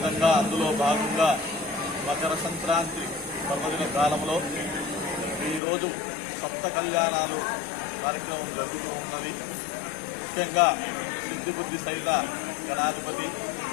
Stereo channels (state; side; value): drops out; right; at 5.6 s